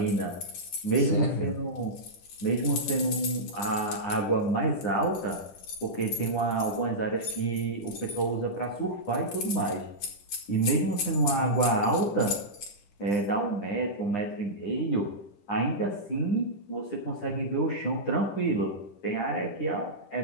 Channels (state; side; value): late; right; 10 ms